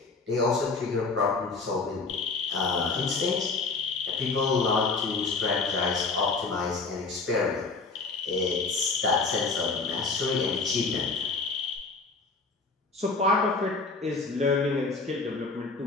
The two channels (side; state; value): right; quieter; 4.1 dB